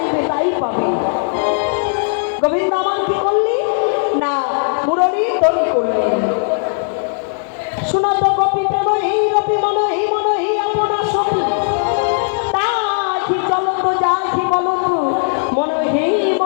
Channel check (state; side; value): silent; right; digital silence